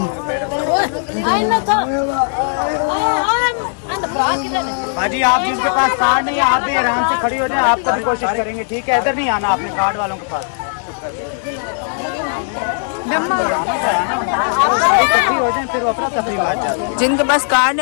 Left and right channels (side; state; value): right; silent; digital silence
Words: हाजी आप जिनके पास कार्ड नहीं है आप भी आराम से खड़ी हो जाए आप तभी कोशिश करेंगे ठीक है इधर नहीं आना आपने कार्ड वालों के पास इकट्ठी हो जाए फिर वो अपना तफरीह आ जाए जिनके पास कार्ड